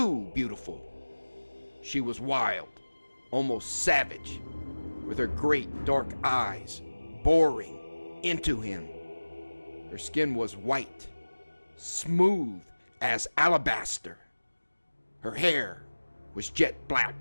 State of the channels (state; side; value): inverted; both; correlation -1.00